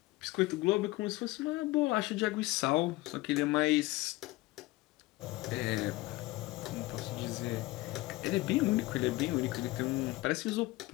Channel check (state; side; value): quieter; right; 20.0 dB